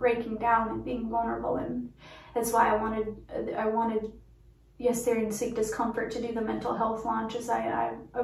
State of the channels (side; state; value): both; identical; correlation 1.00